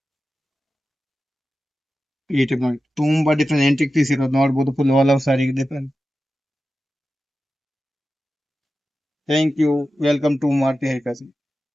ಈ ಟೈಪ್ ನೋಡಿ ತುಂಬಾ ಡಿಫ್ರೆಂಟ್ ಎಂಟಿಕ್ ಪೀಸ್ ಇರೋದು. ನೋಡಬಹುದು ಫುಲ್ ಆಲ್ ಓವರ್ ಸಾರಿಗೆ different. Thank you. Welcome to Maruti high fashion.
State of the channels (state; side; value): normal; both; correlation 0.93